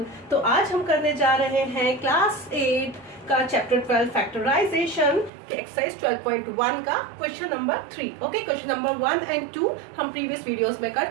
तो आज हम करने जा रहे हैं क्लास 8 का चैप्टर 12 फैक्टराइजेशन के एक्सरसाइज 12.1 का question number 3। Okay, question number 1 and 2 हम प्रीवियस वीडियोस में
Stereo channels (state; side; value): drops out; left; at 5.3 s